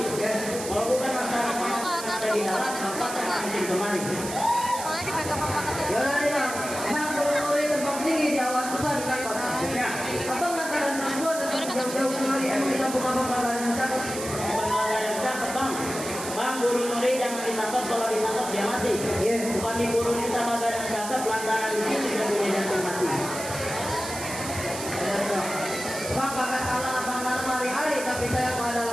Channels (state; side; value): noise; right; hiss, 8 dB below the sound